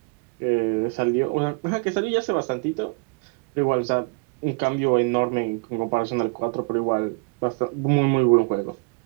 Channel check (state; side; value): quieter; left; 33.5 dB